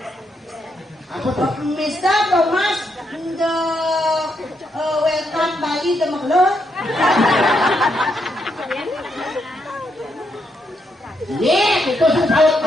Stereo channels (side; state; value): both; normal; correlation 0.79